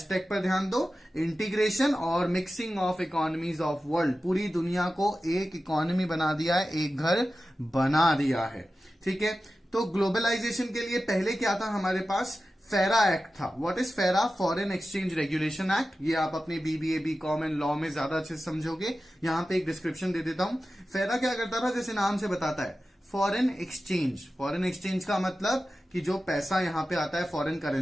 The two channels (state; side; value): normal; both; correlation 0.94